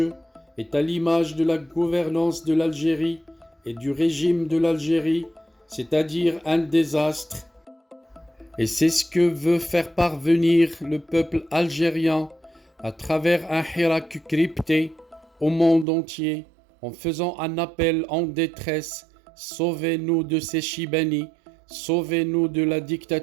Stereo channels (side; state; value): left; drops out; at 15.9 s